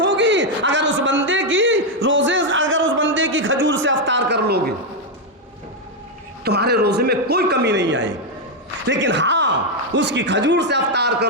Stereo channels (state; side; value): normal; both; correlation 0.02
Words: अगर उस बंदे की खजूर से अफ्तार कर लोगे, तुम्हारे रोजे में कोई कमी नहीं आएगी। लेकिन हाँ, उसकी खजूर से अफ्तार